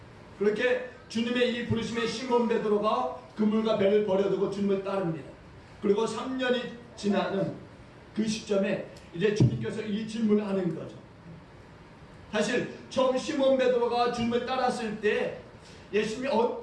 그렇게 주님의 이 부르심에 시몬 베드로가 그물과 배를 버려두고 주님을 따릅니다. 그리고 3년이 지나는 그 시점에 이제 주님께서 이 질문을 하는 거죠. 사실 처음 시몬 베드로가 주님을 따랐을 때 예수님이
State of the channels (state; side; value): identical; both; correlation 1.00